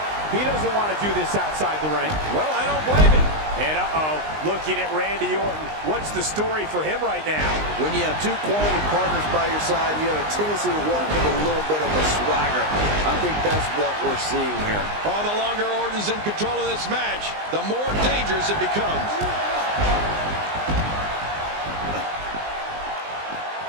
He doesn't want to do this outside the ring. Well, I don't blame him. And looking at Randy Orton, what's the story for him right now? When you have 2 quality partners by your side, you have a tendency to walk with a little bit of a swagger. I think that's what we're seeing here. Oh, the longer Orton's in control of this match, the more dangerous it becomes.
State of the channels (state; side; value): late; left; 19 ms